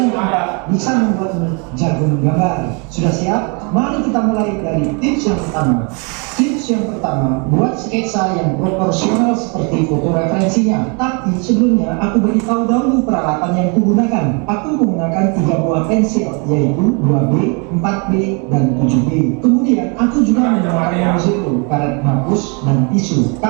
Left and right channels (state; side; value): quieter; left; 34.0 dB